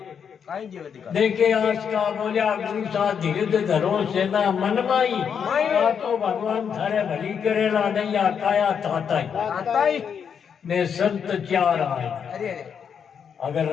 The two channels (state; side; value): quieter; right; 7.3 dB